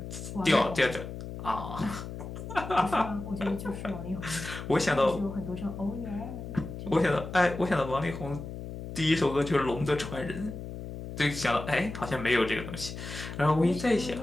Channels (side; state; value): left; noise; hum, 9 dB below the sound